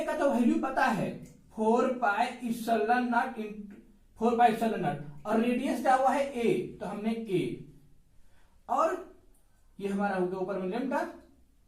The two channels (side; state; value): both; identical; correlation 1.00